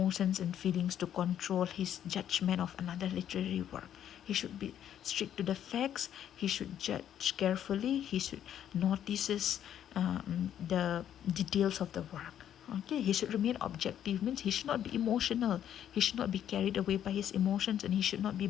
and feelings to control his judgment of another literary work. He should be strict to the facts. He should judge carefully. He should notices the details of the work. Okay, he should remain objective, means he should not be emotional. He should not be carried away by his emotions, and he should not be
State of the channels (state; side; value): quieter; right; 10.2 dB